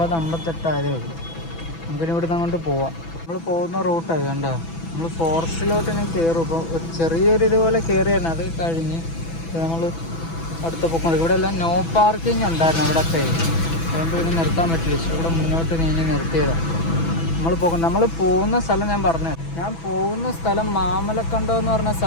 ആയതേ ഉള്ളൂ. നമുക്കിനി ഇവിടുന്ന് അങ്ങോട്ട് പോവാം. നമ്മൾ പോകുന്ന റൂട്ടാണ് കണ്ടോ? നമ്മൾ ഫോറസ്റ്റിലോട്ട് ഇനി കയറും. ഇപ്പോൾ ഒരു ചെറിയൊരു ഇതുപോലെ കയറിയാണ്. അത് കഴിഞ്ഞ് നമ്മൾ അടുത്ത പൊക്കം. ഇവിടെ എല്ലാം നോ പാർക്കിംഗ് ഉണ്ടായിരുന്നു അവിടെയൊക്കെ. അതുകൊണ്ട് പിന്നെ നിർത്താൻ പറ്റില്ല. ഇവിടെ മുന്നോട്ട് നീങ്ങി നിർത്തിയതാണ്. നമ്മൾ പോകുന്ന സ്ഥലം ഞാൻ പോകുന്ന സ്ഥലം മാമലക്കണ്ടം എന്ന് പറഞ്ഞ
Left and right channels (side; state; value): right; late; 6.0 ms